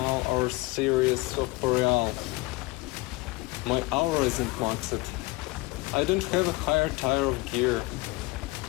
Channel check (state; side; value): quieter; right; 22.4 dB